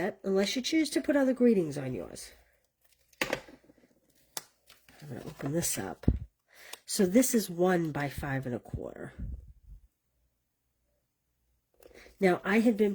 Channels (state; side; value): identical; both; correlation 1.00